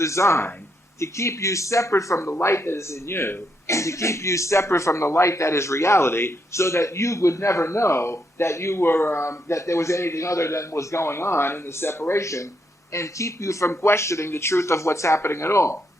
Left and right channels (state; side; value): normal; both; correlation 0.78